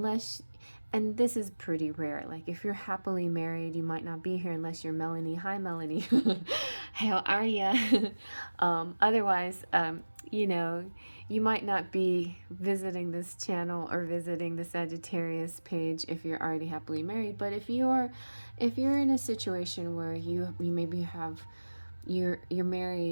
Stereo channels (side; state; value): both; inverted; correlation -1.00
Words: and this is pretty rare, like if you're happily married, you might not be here unless you're Melanie. Hi, Melanie. How are ya? Otherwise, you know, you might not be visiting this channel or visiting the Sagittarius page if you're already happily married. But if you're in a situation where you maybe have, you're